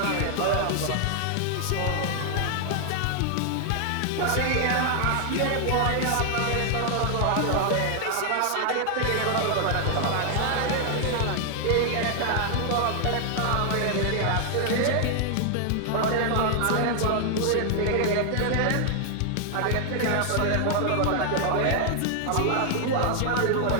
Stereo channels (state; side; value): different; both; correlation 0.00